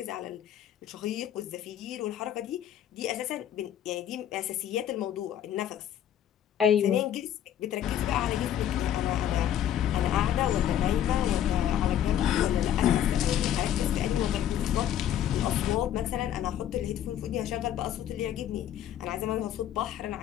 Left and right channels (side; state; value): right; quieter; 10.6 dB